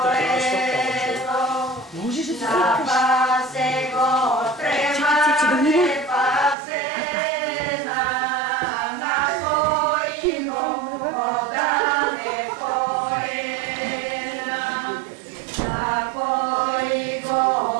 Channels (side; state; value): left; drops out; at 6.6 s